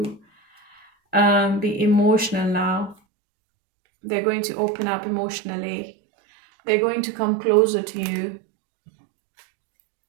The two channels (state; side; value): drops out; left; at 3.0 s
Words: be emotional now. They're going to open up emotionally. They're going to come closer to you.